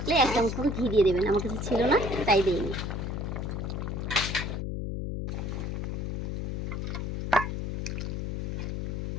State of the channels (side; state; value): left; noise; hum, 2 dB below the sound